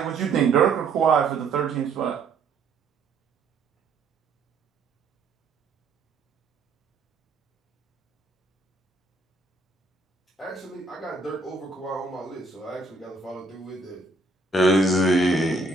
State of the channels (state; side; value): quieter; left; 3.6 dB